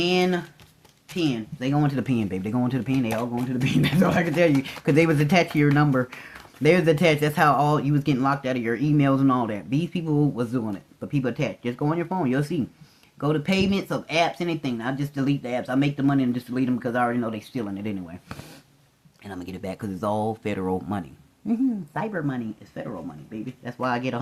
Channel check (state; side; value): identical; both; correlation 1.00